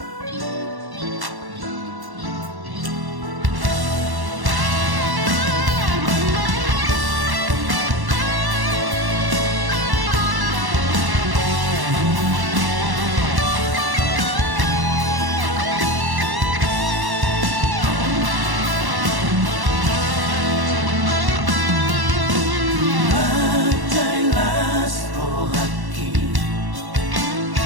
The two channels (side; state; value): left; late; 1.1 ms